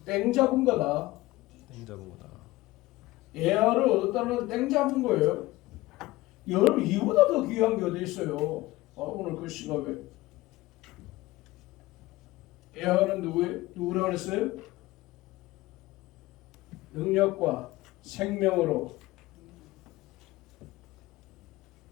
땡 잡은 거다. 에하를 얻었다는 것은 땡 잡은 거예요. 여러분 이보다 더 귀한 게 어디 있어요? 오늘 그 시각에 에하는 누구라고 그랬어요? 능력과 생명으로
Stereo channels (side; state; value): right; quieter; 18.7 dB